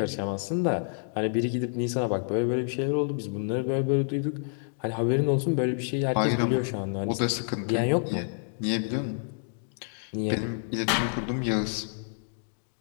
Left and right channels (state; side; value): silent; right; digital silence